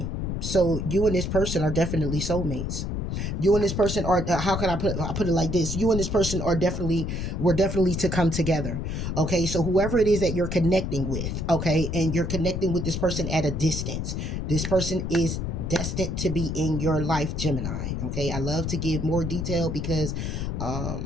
So you and this person are definitely soulmates. You and this person are, how can I put it like this? You and this person are we're definitely to come together. Okay, so whoever it is that you're connecting with, okay, and you're connecting with this person at a distance, this person is destined to be in your life, Gemini. Okay, I love to give more detail because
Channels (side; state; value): left; noise; rumble, 3 dB below the sound